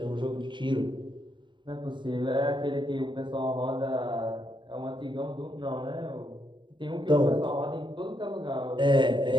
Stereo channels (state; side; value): late; left; 0.23 ms